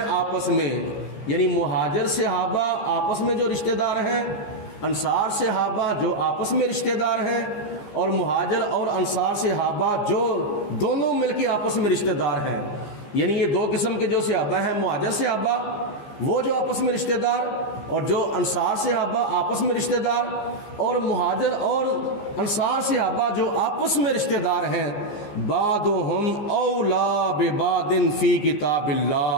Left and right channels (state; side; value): late; right; 14 ms